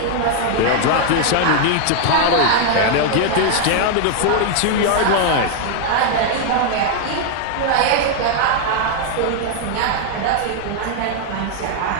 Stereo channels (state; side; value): different; both; correlation 0.00